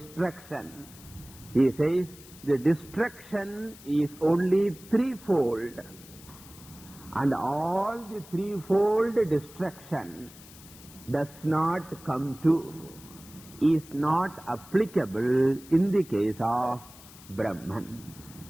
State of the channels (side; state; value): left; noise; hiss, 20 dB below the sound